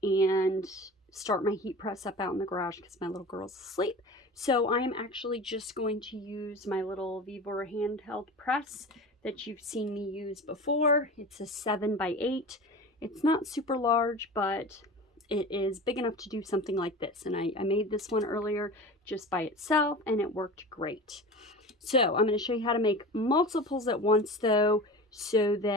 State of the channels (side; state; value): both; normal; correlation 0.34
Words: and start my heat press up out in the garage because my little girl's asleep. So I am actually just going to use my little Vivor handheld press that you've seen me use before. It's a 7x8. It's not super large, but it is big enough to do something like this. And I made this one earlier just by itself and it worked great. So I'm going to show you how to make multiples at once though, so